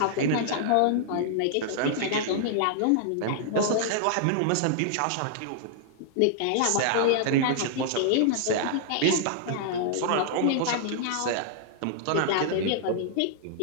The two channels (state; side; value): different; both; correlation -0.01